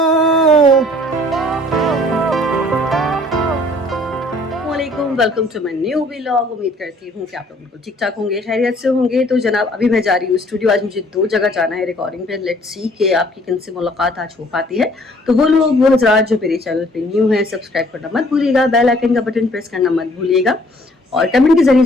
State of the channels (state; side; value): normal; both; correlation 0.58